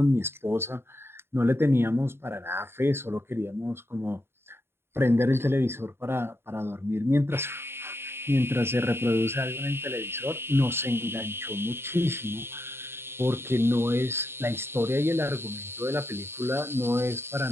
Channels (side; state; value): left; late; 0.11 ms